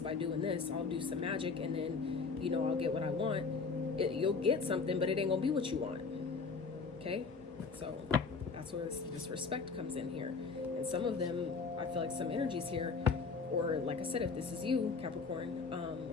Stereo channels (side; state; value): right; quieter; 4.8 dB